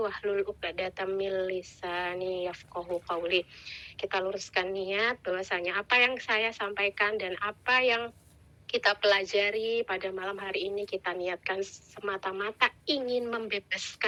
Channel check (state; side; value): identical; both; correlation 1.00